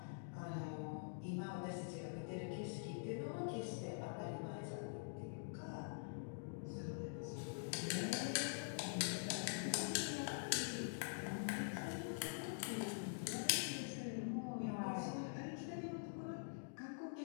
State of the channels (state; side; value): silent; right; digital silence